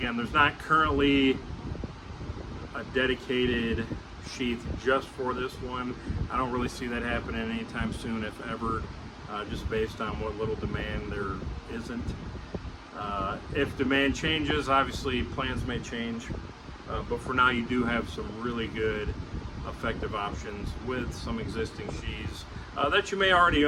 there's not currently a dedicated sheath just for this one. I don't really see that happening anytime soon, if ever, just based on what little demand there isn't. If demand changes, obviously plans may change, but for now you do have some really good effective options with some existing sheaths that you may already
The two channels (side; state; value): both; identical; correlation 1.00